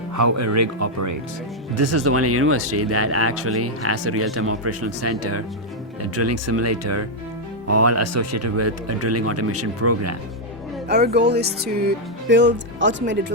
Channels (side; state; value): both; normal; correlation -0.01